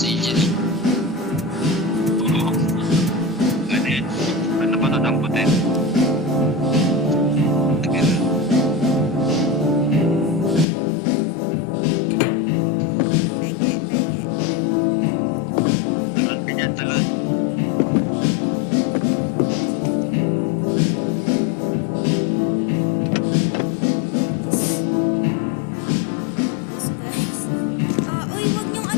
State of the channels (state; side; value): drops out; right; at 10.7 s